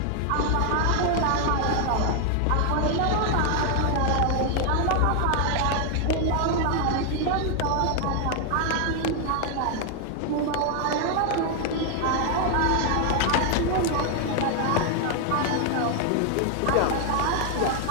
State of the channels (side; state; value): both; different; correlation 0.00